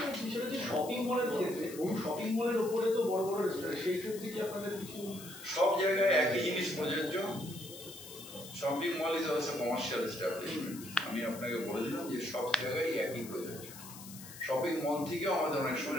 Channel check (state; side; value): noise; left; hiss, 14 dB below the sound